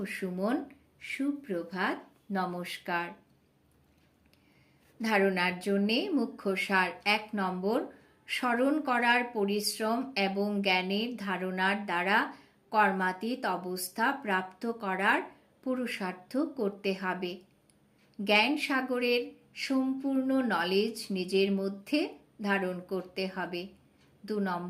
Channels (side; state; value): both; identical; correlation 1.00